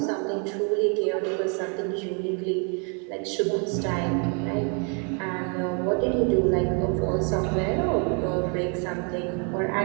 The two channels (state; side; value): quieter; left; 37.8 dB